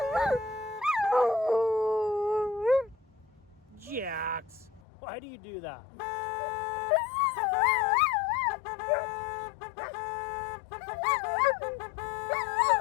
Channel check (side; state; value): right; drops out; at 4.8 s